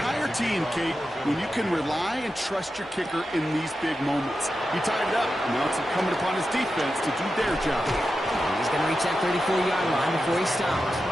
team, Kate, when you can rely and trust your kicker in these big moments. He tied it up, and now it's incumbent upon his defense to do their job. And he's going to reach that 34-yard line before he stops.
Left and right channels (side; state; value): both; normal; correlation 0.90